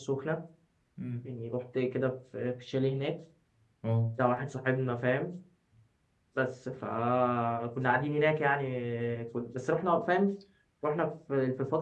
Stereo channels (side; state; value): both; identical; correlation 1.00